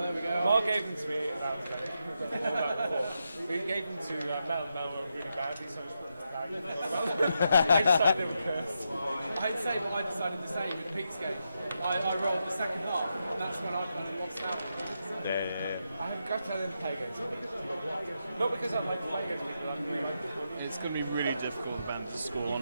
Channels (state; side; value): inverted; both; correlation -0.84